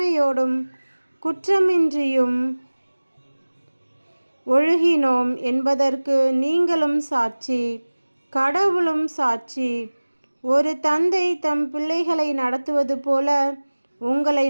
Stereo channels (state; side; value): inverted; both; correlation -1.00